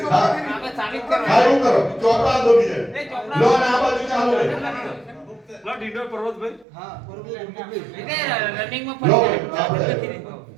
હારું કરો ચોપડા દો બીજે લો ના બાજુ ચાલુ રે લો ડીડો પર્વતભાઈ હા પર્વતભાઈ રનિંગ માં ફરી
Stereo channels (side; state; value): left; drops out; at 6.7 s